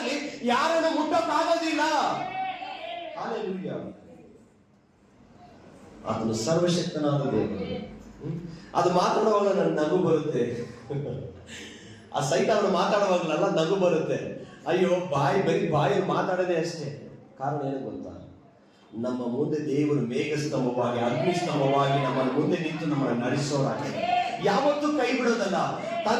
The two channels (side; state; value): both; identical; correlation 1.00